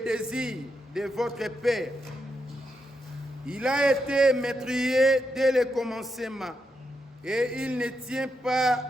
de votre père. Il a été meurtrier dès le commencement et il ne tient pas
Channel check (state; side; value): normal; both; correlation 0.83